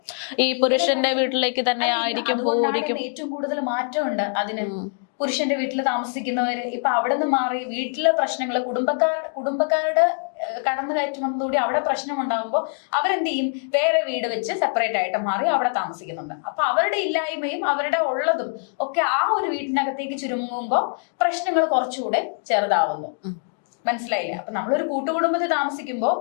ഈ പുരുഷന്റെ വീട്ടിലേക്ക് തന്നെ ആയിരിക്കും പോയിരിക്കും? ഏറ്റവും കൂടുതൽ മാറ്റമുണ്ട് അതിന്. പുരുഷന്റെ വീട്ടിൽ താമസിക്കുന്നവര് ഇപ്പൊ അവിടെ നിന്ന് മാറി വീട്ടിലെ പ്രശ്നങ്ങള് കുടുംബക്കാരുടെ കടന്നുകയറ്റം വന്നതോടെ അവിടെ പ്രശ്നം ഉണ്ടാകുമ്പോൾ അവരെന്ത് ചെയ്യും? വേറെ വീട് വെച്ച് സെപ്പറേറ്റ് ആയിട്ട് മാറി അവിടെ താമസിക്കുന്നുണ്ട്. അപ്പൊ അവരുടെ ഇല്ലായ്മയും അവരുടെ ഉള്ളതും ഒക്കെ ആ ഒരു വീട്ടിനകത്തേക്ക് ചുരുങ്ങുമ്പോൾ പ്രശ്നങ്ങൾ കുറച്ചുകൂടെ ചെറുതാവുന്നു. മനസ്സിലായില്ലേ? അപ്പൊ നമ്മളൊരു കൂട്ടുകുടുംബത്തിൽ താമസിക്കുമ്പോൾ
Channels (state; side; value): silent; right; 60 dB below the other